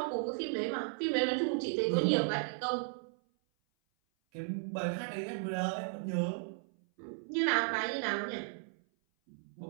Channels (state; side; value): silent; left; 54 dB below the other